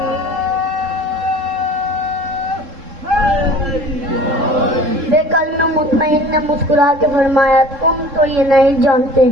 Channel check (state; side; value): late; left; 3.7 ms